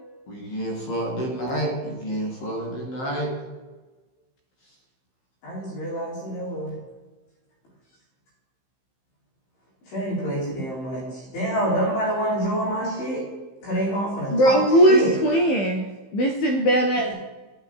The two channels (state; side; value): late; right; 15 ms